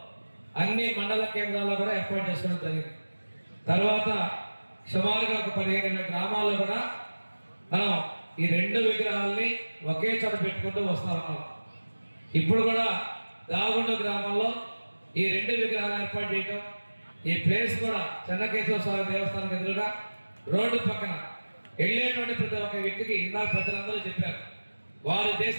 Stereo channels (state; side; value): inverted; both; correlation -1.00